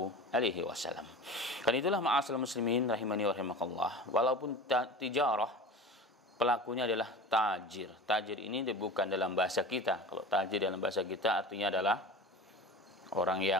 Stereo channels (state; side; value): normal; both; correlation 0.34